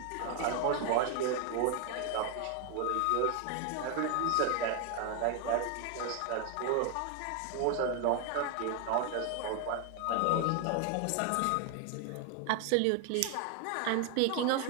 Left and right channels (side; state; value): both; different; correlation 0.00